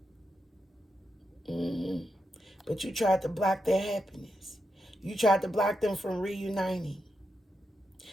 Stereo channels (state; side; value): normal; both; correlation 0.85